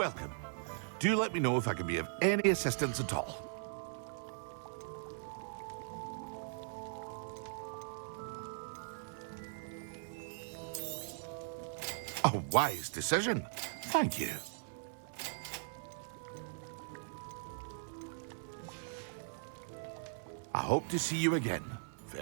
Do let me know if I can be of any assistance at all. A wise decision. Thank you. I hope to see you again.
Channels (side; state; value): left; silent; 52 dB below the other